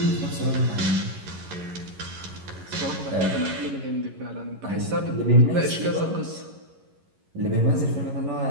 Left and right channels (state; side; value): late; left; 11 ms